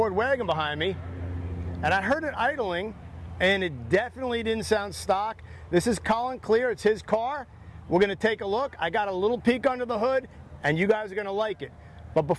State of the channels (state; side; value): identical; both; correlation 1.00